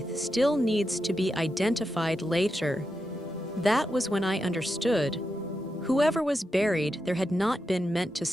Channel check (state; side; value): normal; both; correlation 0.87